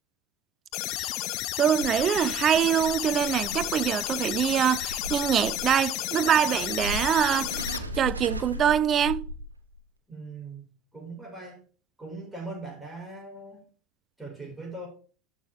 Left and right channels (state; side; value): quieter; left; 5.1 dB